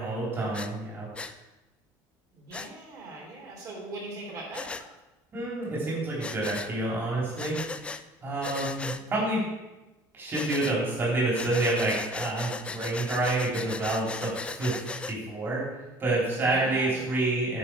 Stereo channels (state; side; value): normal; both; correlation 0.51